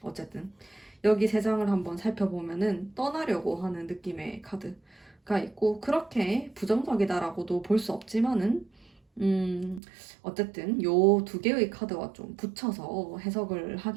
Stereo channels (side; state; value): left; drops out; at 9.8 s